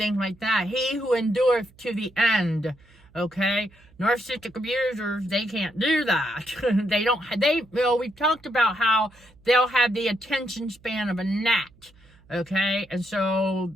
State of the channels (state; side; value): noise; right; hum, 28 dB below the sound